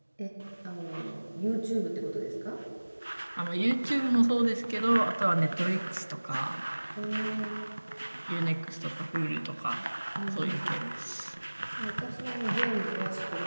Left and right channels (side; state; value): both; inverted; correlation -1.00